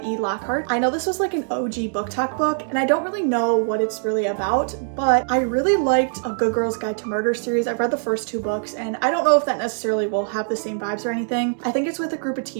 E. Lockhart. I know this was like an OG book talk book, and I don't really know what it's really about, but I really liked A Good Girl's Guide to Murder series. I've read the first two books, and I don't know if that necessarily will have the same vibes or anything. I think it's with a group of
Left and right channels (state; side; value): silent; left; digital silence